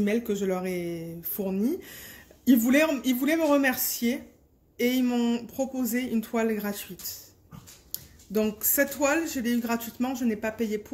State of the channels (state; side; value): identical; both; correlation 1.00